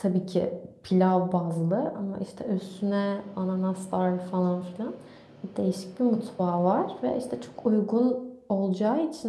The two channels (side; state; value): both; identical; correlation 1.00